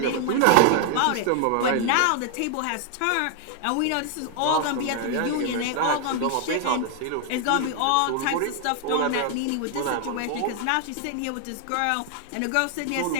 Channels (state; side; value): different; both; correlation 0.00